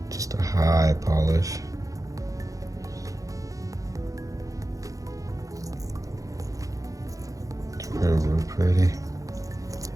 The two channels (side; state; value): left; late; 0.16 ms